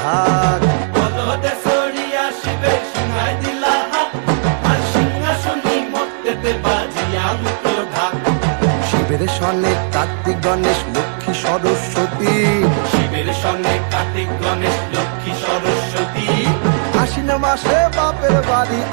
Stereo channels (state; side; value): silent; left; 60 dB below the other